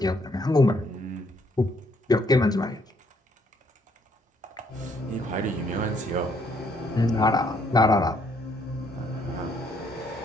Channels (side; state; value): both; normal; correlation 0.69